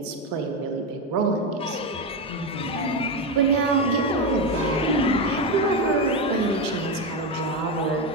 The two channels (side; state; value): both; normal; correlation 0.12